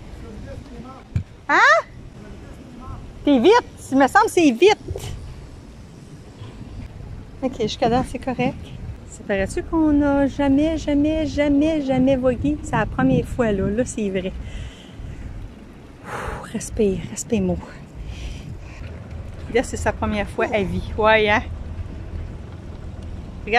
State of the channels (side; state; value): both; identical; correlation 1.00